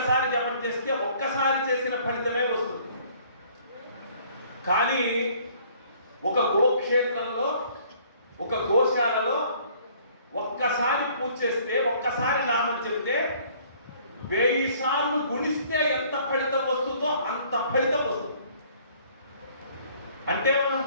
జపం చేస్తే ఒక్కసారి చేసిన ఫలితమే వస్తుంది. కానీ ఒక గోక్షేత్రంలో, ఒక గోశాలలో ఒక్కసారి పూజ చేస్తే, ఒక్కసారి నామం చెబితే 1000 సార్లు గుణిస్తే ఎంత ఫలితం వస్తుందో అంత ఫలితం వస్తుంది. అంటే మనం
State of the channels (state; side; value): inverted; both; correlation -0.58